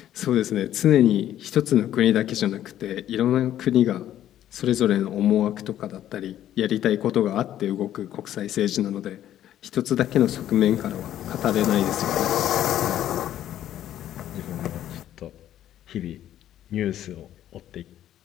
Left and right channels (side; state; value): right; quieter; 11.8 dB